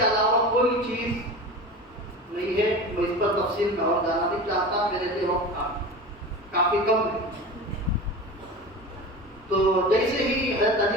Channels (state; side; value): normal; both; correlation 0.32